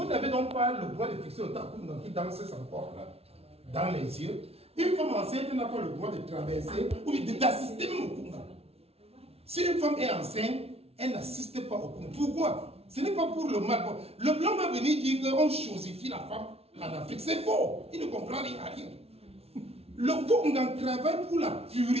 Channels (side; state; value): left; late; 0.30 ms